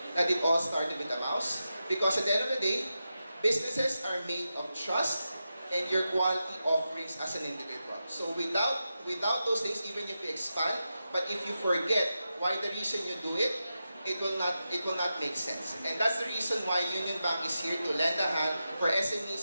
that it all started with a mouse. Because at the end of the day, businesses are made of trust and your quality offerings as an individual. So without those things, even if you expand, but if you forget why the reason you do it, it will not make sense. And that's the reason why UnionBank is here to lend a hand for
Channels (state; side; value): inverted; both; correlation -0.89